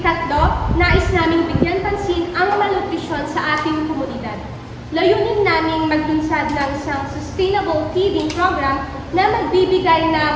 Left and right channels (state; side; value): identical; both; correlation 1.00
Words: nais naming bigyan pansin ang malnutrisyon sa ating komunidad. Layunin naming maglunsad ng isang sustainable feeding program na magbibigay